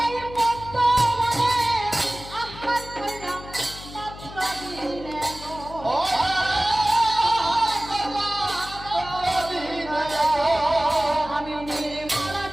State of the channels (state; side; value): noise; left; hum, 15 dB below the sound